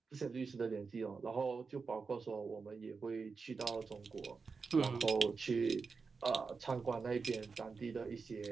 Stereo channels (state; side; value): quieter; left; 4.8 dB